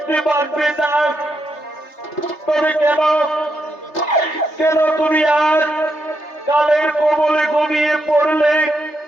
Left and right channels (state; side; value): late; right; 3.3 ms